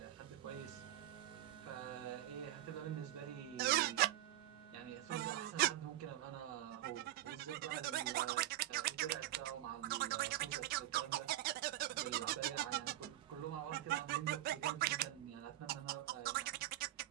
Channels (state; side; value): quieter; left; 14.3 dB